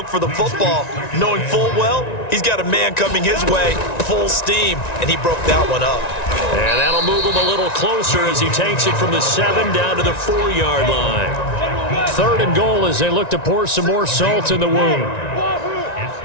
for the football, knowing full well he's got a man coming his way, full steam, and he broke that one up. And that'll move him a little closer as he takes it from the 7 down to the 4-yard line. 3rd and goal as they look to pour some more salt in the wound.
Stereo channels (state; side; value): late; right; 1.9 ms